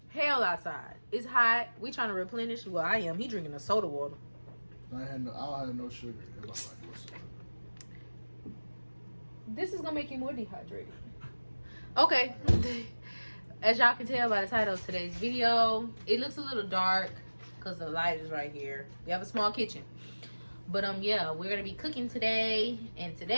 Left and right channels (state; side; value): inverted; both; correlation -1.00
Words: hell outside. It's hot. We trying to replenish. Well, I am. He drinking a soda water. I had no sugar in my life whatsoever. This is gonna make you more dehydrated. Okay. As y'all can tell by the title of today's video, it looks a little dark because the light is right here. We have a small kitchen. But yeah, we're gonna be cooking today, and